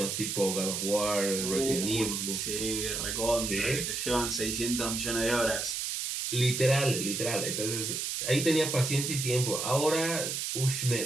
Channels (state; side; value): noise; right; hiss, 2 dB below the sound